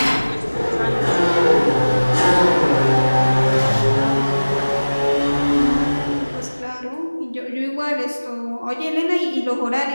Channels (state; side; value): inverted; both; correlation -1.00